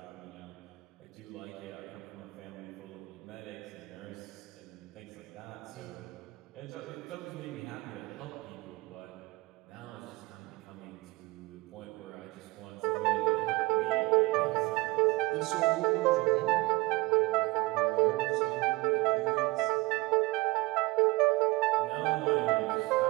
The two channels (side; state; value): left; quieter; 22.7 dB